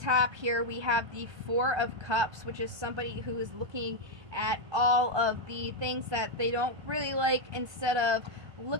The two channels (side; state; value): left; late; 1.2 ms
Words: here, we have the Four of Cups, which is somebody who is looking at all of the things that they don't really like, instead of